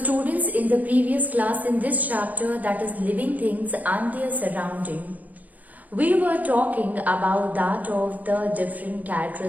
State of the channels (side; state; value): left; late; 0.079 ms